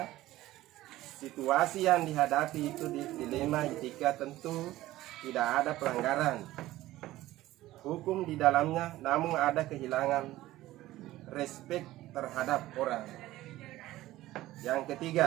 situasi yang dihadapi itu dilema etika, tentu tidak ada pelanggaran hukum di dalamnya, namun ada kehilangan respek terhadap orang. Yang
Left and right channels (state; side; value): quieter; left; 16.1 dB